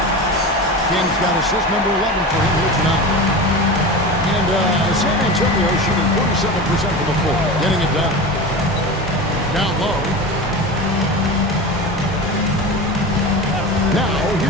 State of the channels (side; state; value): both; normal; correlation 0.28